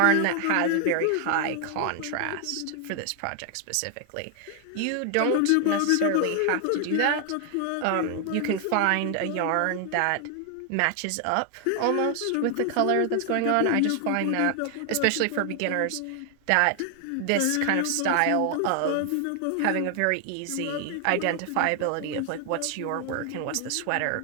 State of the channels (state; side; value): different; both; correlation 0.00